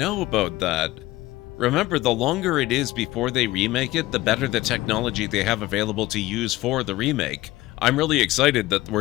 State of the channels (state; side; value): quieter; right; 17.7 dB